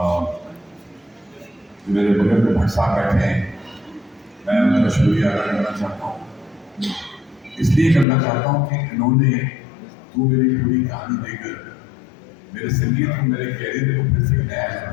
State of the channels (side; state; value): right; drops out; at 8.1 s